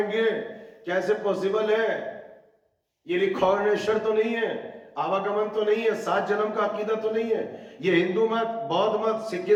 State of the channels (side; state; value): both; identical; correlation 1.00